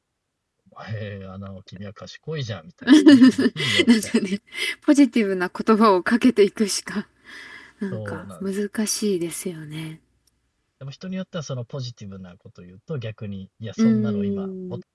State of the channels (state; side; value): identical; both; correlation 1.00